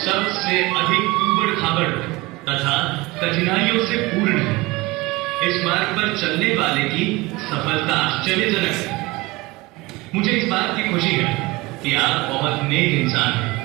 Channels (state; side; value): quieter; left; 22.2 dB